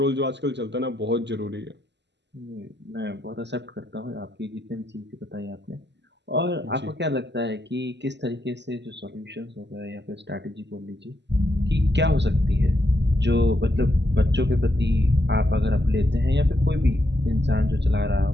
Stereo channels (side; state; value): left; late; 0.51 ms